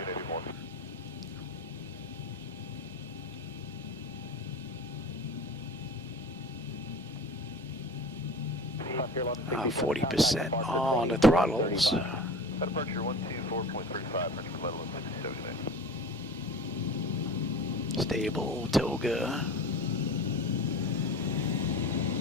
40% on the throttles. Departure 124.35, French Level 67. Stable, Toga.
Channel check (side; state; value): both; normal; correlation 0.35